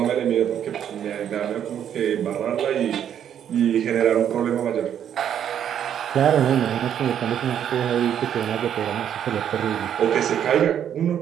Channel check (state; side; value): quieter; left; 9.4 dB